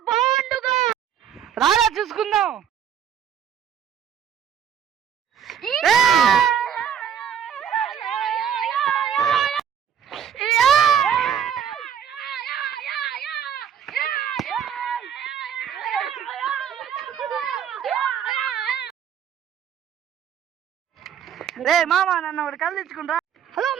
బాండుగా? రారా చూసుకుందాం. రే మామ, నన్ను ఒకటి కళ్ళు తెచ్చుకుంటా. హలో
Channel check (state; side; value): quieter; left; 8.6 dB